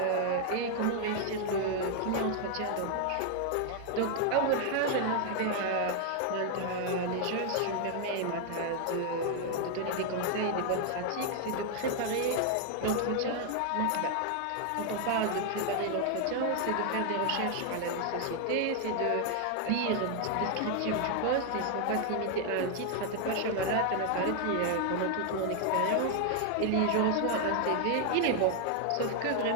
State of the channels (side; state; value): both; different; correlation 0.00